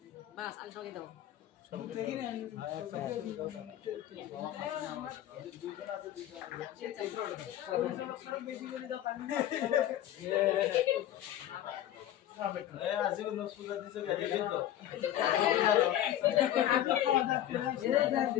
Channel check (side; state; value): right; quieter; 12.3 dB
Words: বাস আমি সবাইকে দেবো